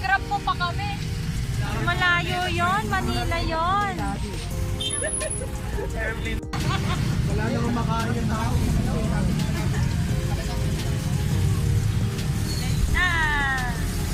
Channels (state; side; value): identical; both; correlation 1.00